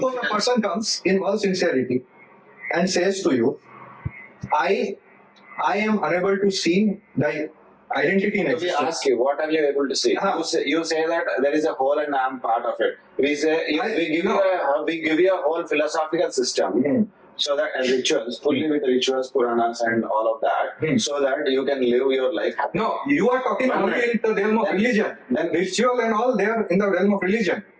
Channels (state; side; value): identical; both; correlation 1.00